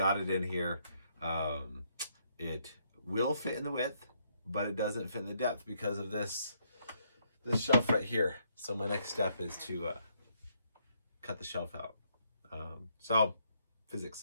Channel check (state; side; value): inverted; both; correlation -0.73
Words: it in here, it will fit in the width, but it doesn't fit in the depth because of this shelf right here. So my next step is to cut the shelf out. So